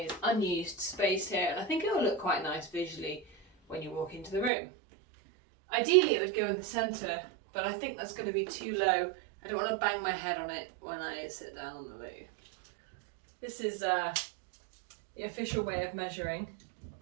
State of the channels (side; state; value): left; drops out; at 4.5 s